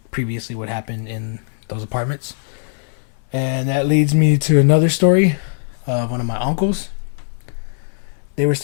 previously what happened in those apartments. And that leads me to another story of one of my uncles. They were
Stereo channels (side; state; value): right; silent; digital silence